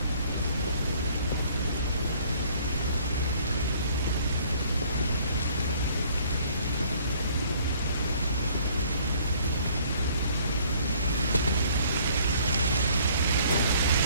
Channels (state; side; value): inverted; both; correlation -0.58